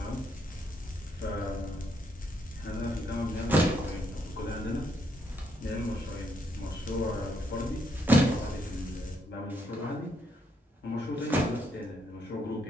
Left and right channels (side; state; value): both; normal; correlation 0.75